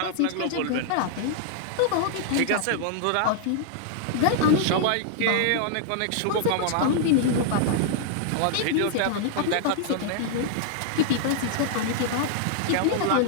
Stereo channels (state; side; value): different; both; correlation -0.01